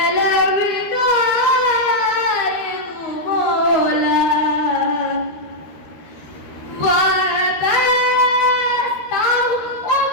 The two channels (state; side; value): late; right; 13 ms